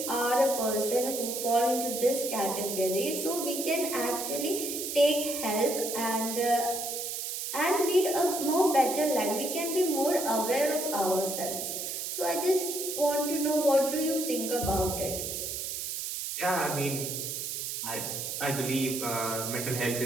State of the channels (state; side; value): noise; right; hiss, 4 dB below the sound